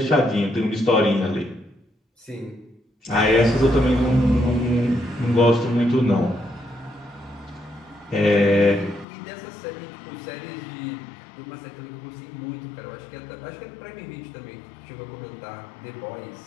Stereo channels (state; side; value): drops out; right; at 9.1 s